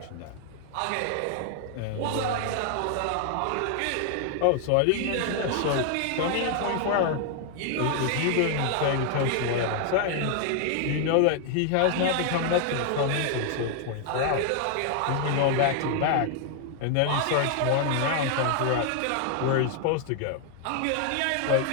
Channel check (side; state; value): both; different; correlation 0.00